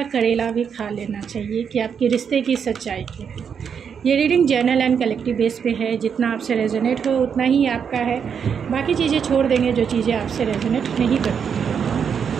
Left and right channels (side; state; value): left; quieter; 7.1 dB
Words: करेला भी खा लेना चाहिए कि आपके रिश्ते की सच्चाई क्या है। ये reading journal and collective base पे है। जितना आपसे रेजोनेट हो उतना ही आपका है, बाकी चीज़ें छोड़ देंगे जो चीज़ें आपसे रेजोनेट नहीं करती।